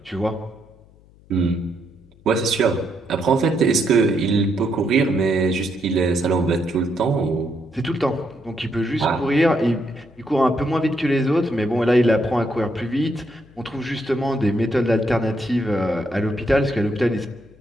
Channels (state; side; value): noise; left; hum, 27 dB below the sound